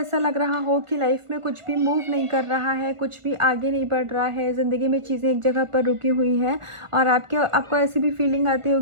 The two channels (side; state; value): left; late; 1.4 ms